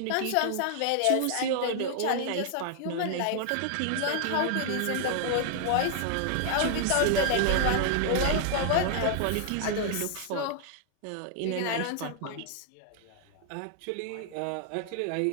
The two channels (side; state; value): both; different; correlation -0.01